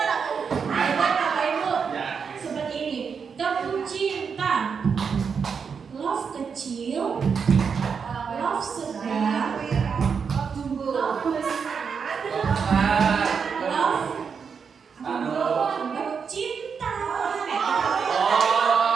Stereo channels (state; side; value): quieter; left; 6.2 dB